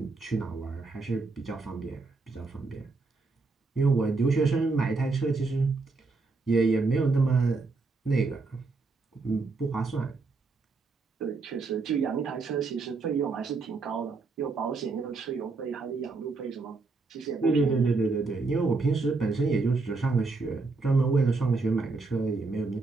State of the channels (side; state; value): left; quieter; 3.9 dB